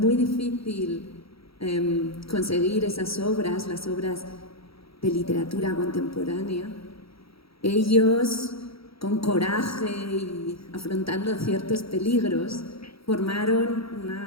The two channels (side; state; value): right; late; 0.76 ms